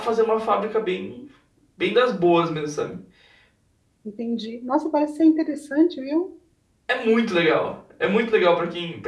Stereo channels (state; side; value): identical; both; correlation 1.00